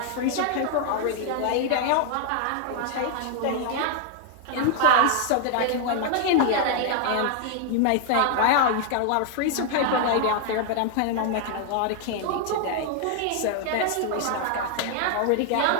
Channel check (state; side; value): different; both; correlation 0.00